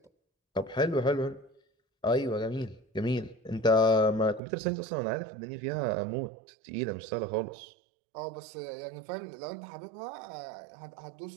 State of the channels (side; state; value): left; drops out; at 4.4 s